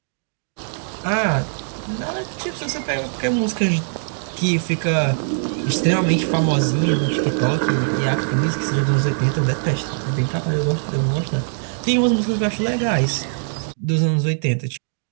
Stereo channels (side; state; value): left; silent; digital silence